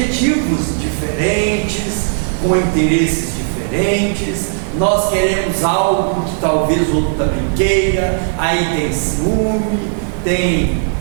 diferentes, com interesses diferentes. Nós queremos algo que talvez o outro também queira, aí tem ciúme, tem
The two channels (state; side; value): silent; left; digital silence